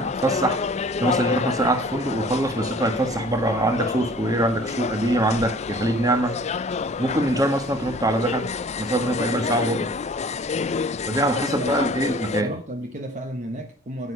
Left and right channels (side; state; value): both; normal; correlation 0.49